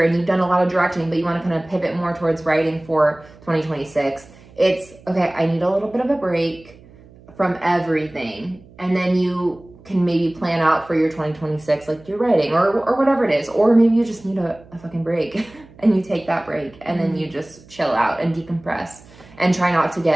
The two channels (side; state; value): right; noise; hum, 24 dB below the sound